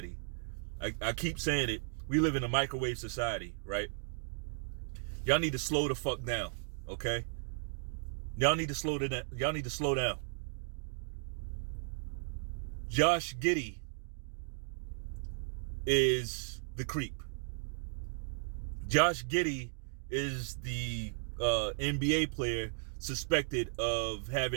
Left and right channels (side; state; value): left; silent; digital silence